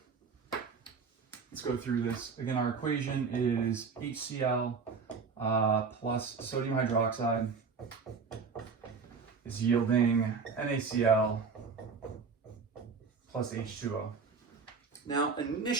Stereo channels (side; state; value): left; quieter; 5.2 dB